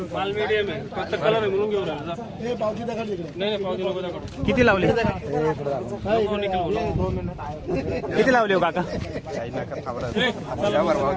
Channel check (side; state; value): both; identical; correlation 1.00